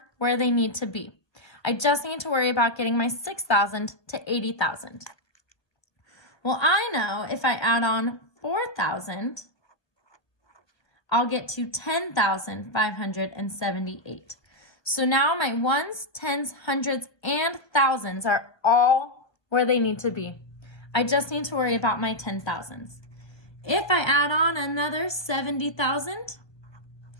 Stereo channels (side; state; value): right; late; 1.4 ms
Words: where they need to be. I just need to worry about getting my 6,000 to 80,000. Well, I know if I add on 4,000, I'll get to 10,578. So now my ones, tens, hundreds, and thousands are all where they need to be. I just need to worry about my 10,000s. If I add on another 70,000,